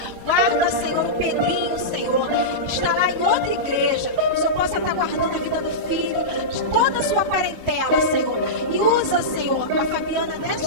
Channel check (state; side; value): late; left; 22 ms